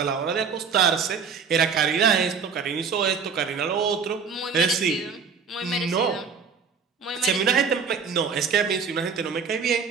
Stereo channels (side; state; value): left; quieter; 5.9 dB